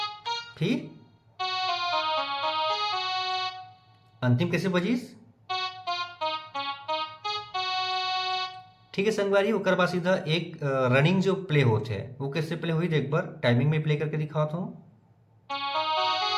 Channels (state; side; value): identical; both; correlation 1.00